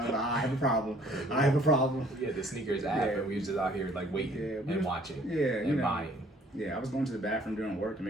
have a problem. I have a problem. We had the sneakers app, and we was just out here like waiting and watching, and buying. Yeah, I was going to the bathroom doing work to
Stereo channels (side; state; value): both; normal; correlation 0.58